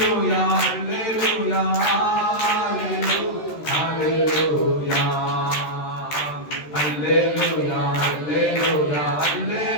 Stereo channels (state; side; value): late; right; 13 ms